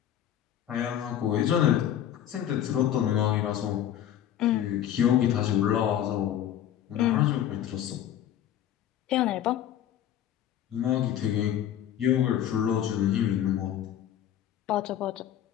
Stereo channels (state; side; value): quieter; right; 10.9 dB